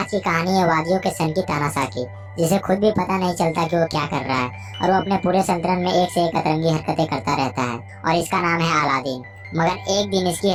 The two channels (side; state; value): both; identical; correlation 1.00